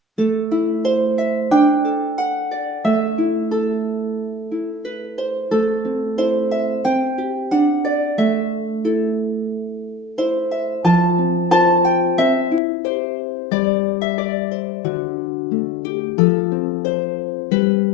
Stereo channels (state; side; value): drops out; right; at 12.6 s